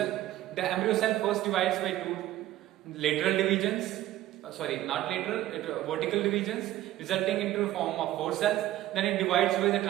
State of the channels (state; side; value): quieter; left; 14.3 dB